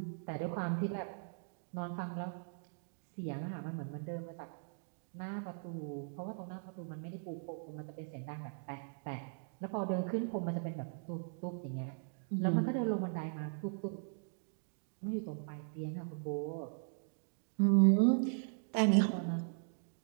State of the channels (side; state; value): left; silent; digital silence